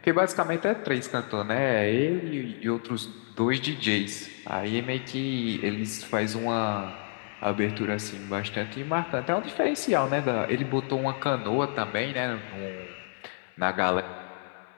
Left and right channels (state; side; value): silent; right; 59 dB below the other